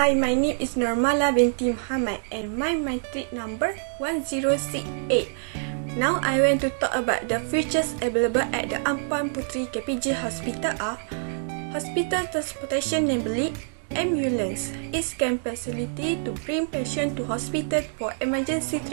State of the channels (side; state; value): left; silent; digital silence